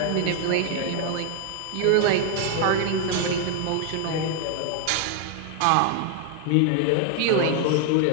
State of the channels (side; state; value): both; different; correlation 0.00